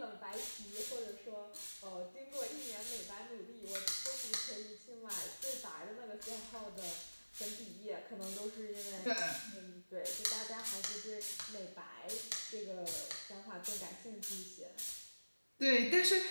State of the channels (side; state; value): both; inverted; correlation -1.00